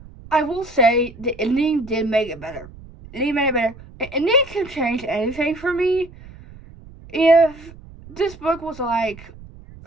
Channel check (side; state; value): right; noise; rumble, 19 dB below the sound